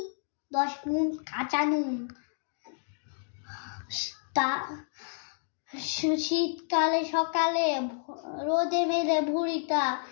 10 গুণ কাঁচা নুন। শীতকালে সকালে রোদে মেলে ভুঁড়িটা,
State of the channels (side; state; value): right; silent; digital silence